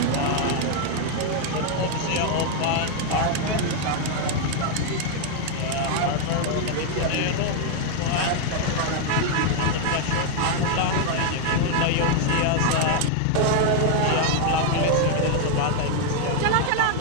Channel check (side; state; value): both; different; correlation 0.00